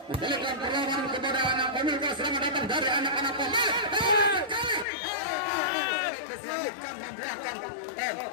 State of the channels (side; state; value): right; drops out; at 4.9 s